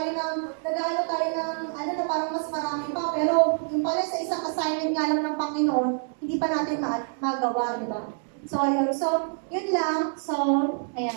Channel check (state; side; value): silent; left; 59 dB below the other